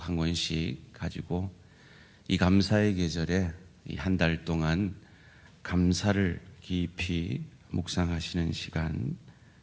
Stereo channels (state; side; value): identical; both; correlation 1.00